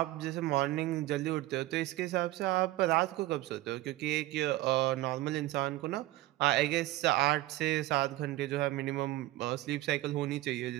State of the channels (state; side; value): quieter; left; 17.0 dB